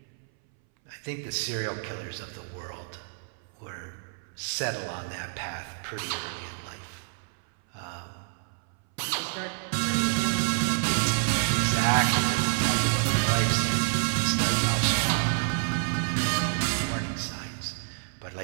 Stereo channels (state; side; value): silent; left; 59 dB below the other